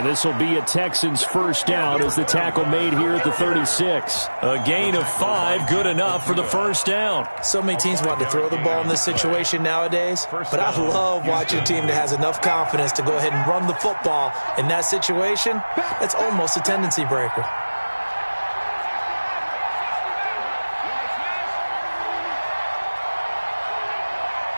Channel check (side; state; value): both; inverted; correlation -1.00